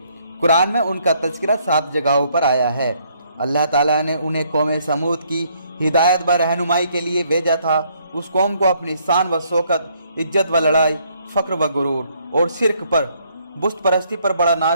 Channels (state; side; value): inverted; both; correlation -0.69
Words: कुरान में उनका तज़किरा 7 जगहों पर आया है। अल्लाह ताला ने उन्हें कौम समूद की हिदायत व रहनुमाई के लिए भेजा था। उस कौम को अपनी शान व शौकत, इज्जत व लड़ाई, फ़क्र व गुरूर और शिरक पर, बुत परस्ती पर बड़ा